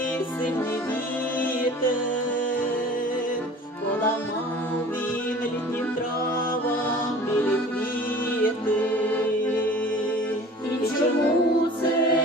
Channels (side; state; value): both; normal; correlation 0.44